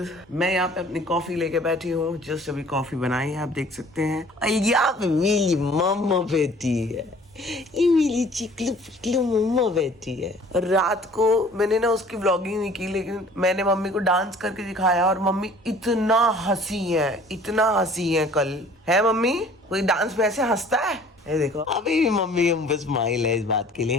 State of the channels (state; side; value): normal; both; correlation 0.52